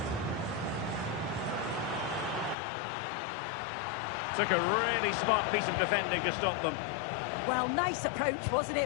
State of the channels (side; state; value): right; drops out; at 2.6 s